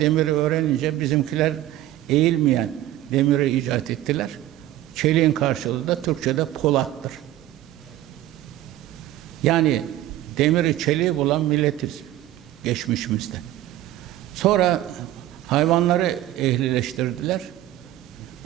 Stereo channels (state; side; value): quieter; left; 14.2 dB